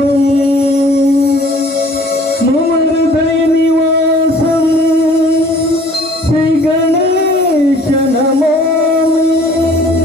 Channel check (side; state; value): both; normal; correlation 0.53